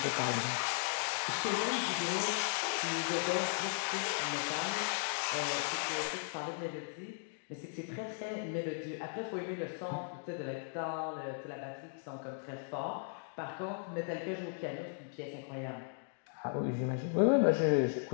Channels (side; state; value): right; silent; digital silence